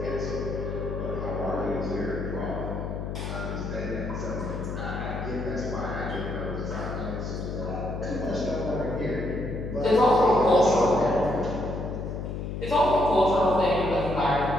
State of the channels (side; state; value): left; noise; hum, 5 dB below the sound